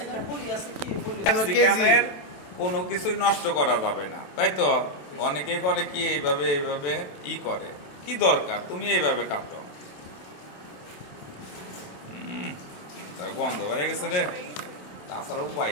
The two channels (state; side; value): late; right; 27 ms